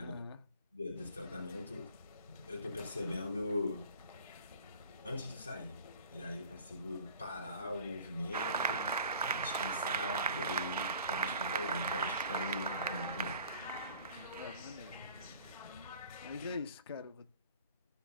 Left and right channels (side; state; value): both; inverted; correlation -0.47